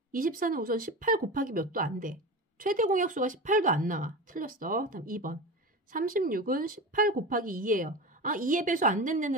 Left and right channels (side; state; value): both; normal; correlation 0.27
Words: 우선 18 곱하기 몇도 안 돼. 최대 공약수가 18도 안 나와. 틀렸어. 다음 2번. 36은 18 곱하기 2예요. 아, 2의 배수 안